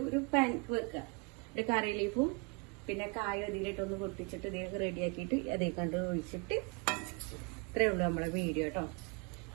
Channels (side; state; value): left; quieter; 31.4 dB